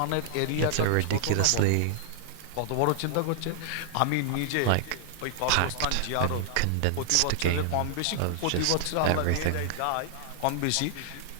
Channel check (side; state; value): both; different; correlation -0.01